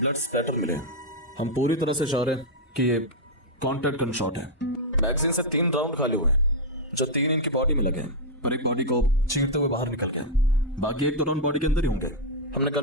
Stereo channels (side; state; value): both; normal; correlation -0.03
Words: स्पैटर मिले हैं। हम पूरी तरह से श्योर हैं कि ये कॉन्टैक्ट गन शॉट है। मैगजीन से 3 राउंड खाली हुए हैं, जो 3 इनकी बॉडी में लगे हैं और एक बॉडी को चीरते हुए बाहर निकल गए। बाकी 1 राउंड बॉडी के अंदर ही होंगे। हमने